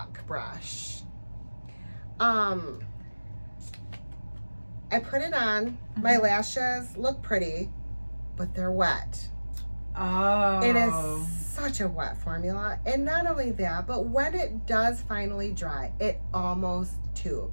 brush. I put it on. My lashes look pretty, but they're wet. Oh. It is such a wet formula. And not only that, but when it does finally dry, it almost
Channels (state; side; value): inverted; both; correlation -1.00